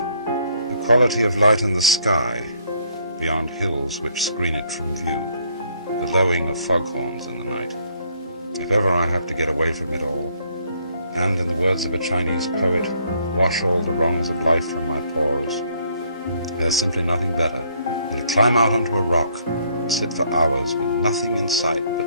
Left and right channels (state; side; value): inverted; both; correlation -0.67